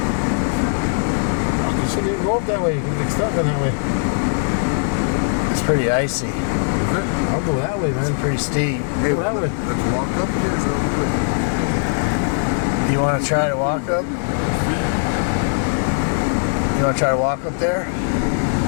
shouldn't even go up that way. Get started that way. It's pretty icy. I'll go that way, man. It's pretty steep. Hey, go that way. Let's walk up here. You want to try to walk up? You want to try to walk up there?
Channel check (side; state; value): right; silent; digital silence